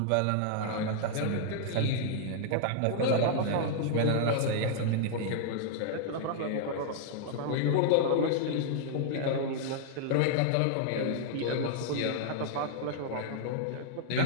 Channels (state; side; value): different; both; correlation -0.01